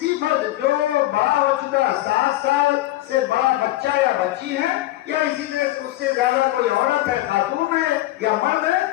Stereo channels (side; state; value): right; quieter; 16.4 dB